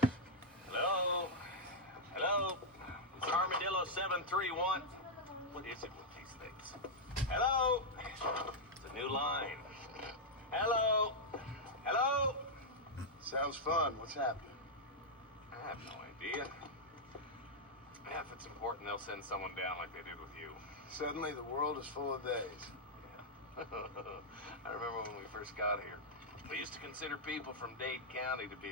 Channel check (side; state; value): both; normal; correlation -0.04